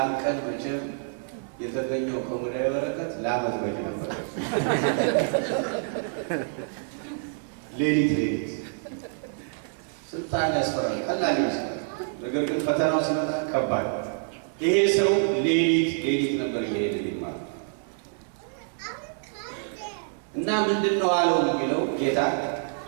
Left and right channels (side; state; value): left; silent; digital silence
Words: ቀን መቼም የተገኘው ከሙዳየ በረከት ለዓመት በቂ ነበር። ሌሊት ስልጣን ያስፈራል፣ ቀላል ይመስላል። ነገር ግን ፈተናው ሲመጣ ከባድ። ይሄ ሰው ሌሊት ነበር እየሄደ ማለት እና ምንድን ነው አለው የሚለው ጌታ